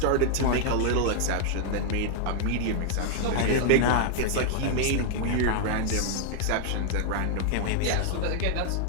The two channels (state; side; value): different; both; correlation 0.00